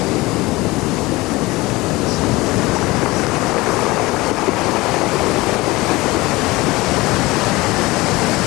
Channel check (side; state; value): right; quieter; 21.0 dB